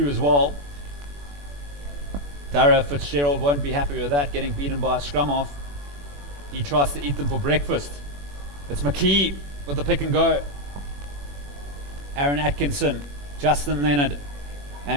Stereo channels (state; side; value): late; left; 21 ms